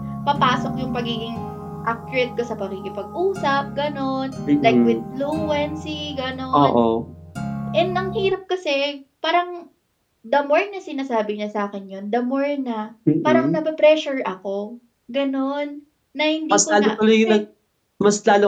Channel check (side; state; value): both; identical; correlation 1.00